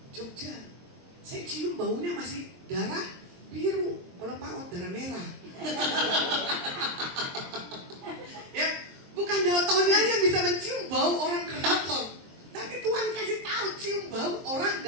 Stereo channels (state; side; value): late; left; 23 ms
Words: Jogja. Saya cium baunya masih darah biru, kalau paut darah merah. Ya, bukan daltonnya yang bisa mencium bau orang keraton, tapi Tuhan kasih tahu cium bau orang